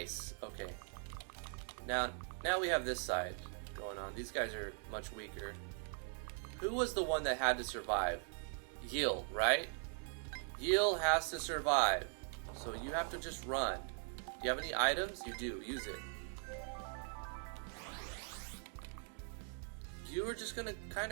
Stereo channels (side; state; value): left; silent; 50 dB below the other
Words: Okay. Now we have this side going on. These guys are much weaker. Who was the one that had to survive? Yil, right? Yil has to survive. So you have to just run. Do you have any items? You do. Use it. You were just gonna kind